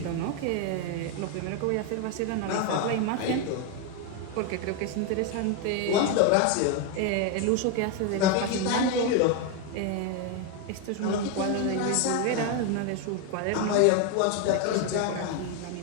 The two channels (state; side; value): different; both; correlation 0.01